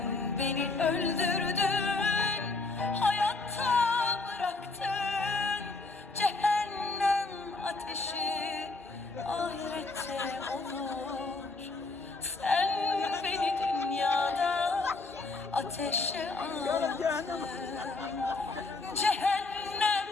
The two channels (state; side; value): quieter; right; 3.5 dB